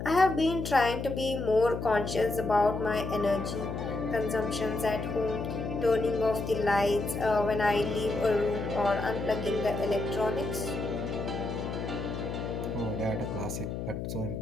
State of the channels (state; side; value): noise; left; hum, 5 dB below the sound